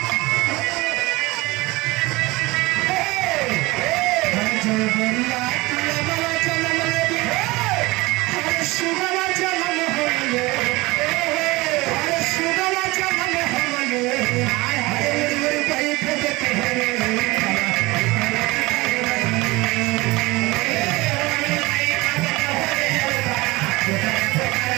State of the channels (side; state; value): left; quieter; 21.8 dB